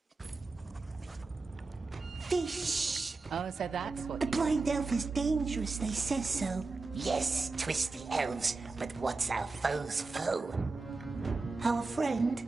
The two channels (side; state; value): left; quieter; 3.8 dB